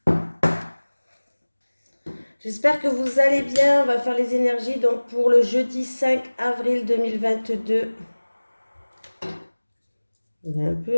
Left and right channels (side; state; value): both; inverted; correlation -1.00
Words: J'espère que vous allez bien. On va faire les énergies donc pour le jeudi 5 avril 2022. Il est un